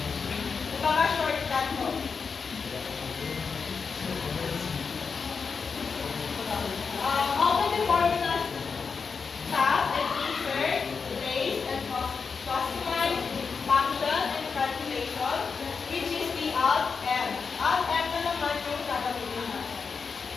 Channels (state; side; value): quieter; right; 5.4 dB